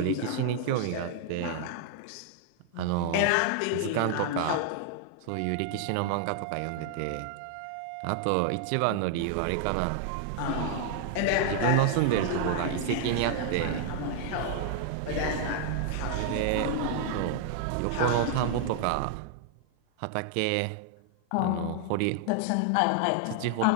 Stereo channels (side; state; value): both; different; correlation 0.00